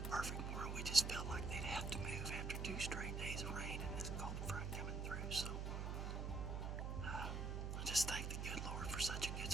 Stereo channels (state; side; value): noise; right; hum, 1 dB below the sound